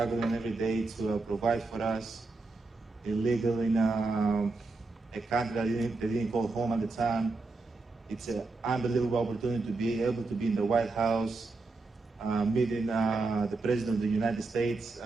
every day to provide for us. Illegal in a country that they didn't call home at the time. It's an unbelievable opportunity to be able to be in the White House, meeting the President of the United States.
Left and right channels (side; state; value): left; quieter; 3.6 dB